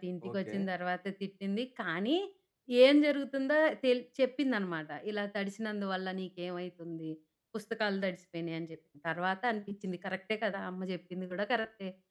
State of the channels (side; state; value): both; identical; correlation 1.00